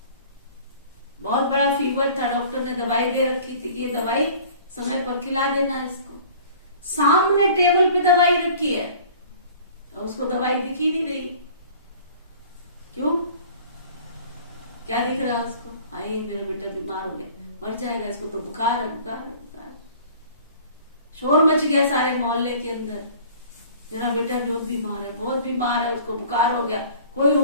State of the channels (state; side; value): inverted; both; correlation -0.48